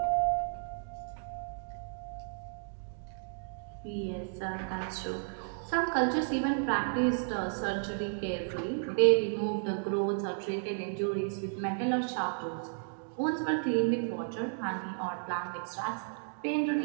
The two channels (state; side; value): silent; left; digital silence